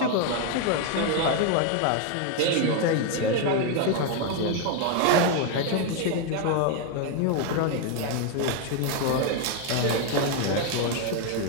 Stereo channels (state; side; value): different; both; correlation 0.01